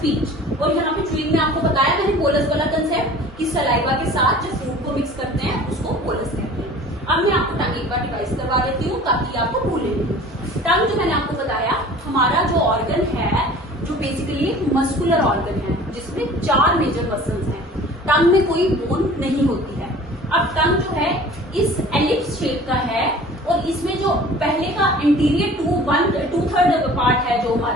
और यहाँ पे च्यूइंग में आपको बताया मैंने बोलस वाला कंसेप्ट कि सलाइवा के साथ जो फूड को मिक्स करते हैं उसको बोलस कहते हैं। अब मैं आपको टंग एक बार डिवाइस करवा देती हूँ ताकि आपको भूले नहीं। टंग जो मैंने आपको बताया हमारा जो ऑर्गन है, जो बेसिकली मस्कुलर ऑर्गन है जिसमें 4 मेजर मसल्स हैं। टंग में कोई बोन नहीं होती है। अब टंग जो है इस एलिप्स शेप का है और इसमें जो पहले का इंटीरियर 2/3 पार्ट है जो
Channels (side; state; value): both; normal; correlation 0.45